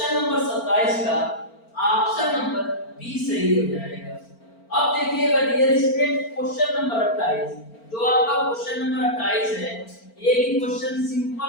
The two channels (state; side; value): late; right; 4.4 ms